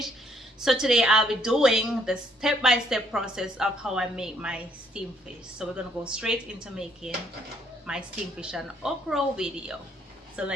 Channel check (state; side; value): normal; both; correlation 0.68